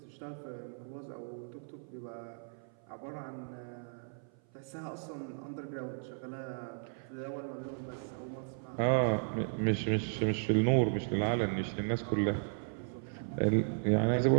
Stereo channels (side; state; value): left; silent; 54 dB below the other